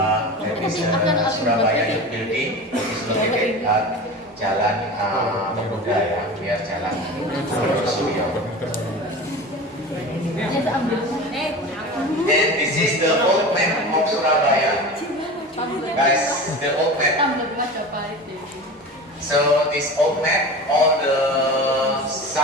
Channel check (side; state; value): both; normal; correlation 0.32